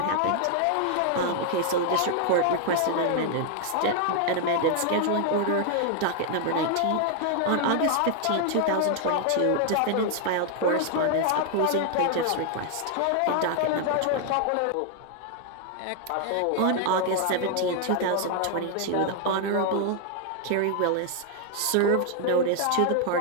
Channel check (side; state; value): both; different; correlation 0.00